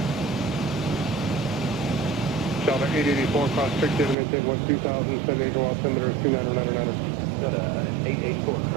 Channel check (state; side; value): drops out; left; at 4.2 s